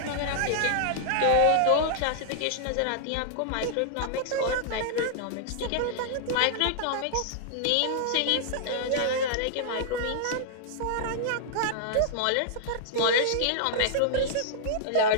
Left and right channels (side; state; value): both; different; correlation -0.01